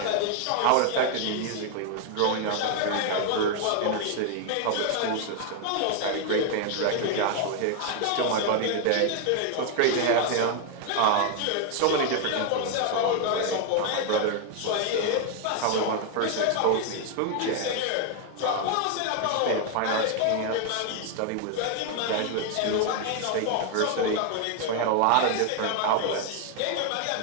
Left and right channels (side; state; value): both; different; correlation 0.00